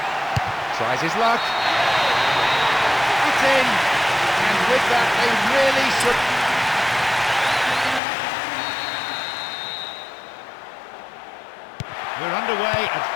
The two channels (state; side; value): drops out; right; at 8.0 s